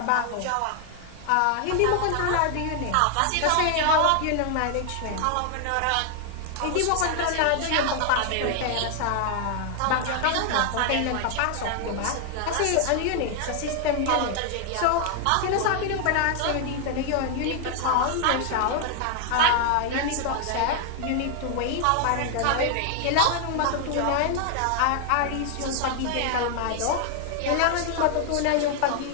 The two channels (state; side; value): different; both; correlation 0.00